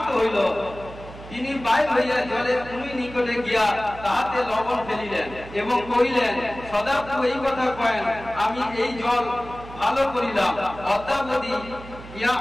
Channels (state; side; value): noise; right; hum, 15 dB below the sound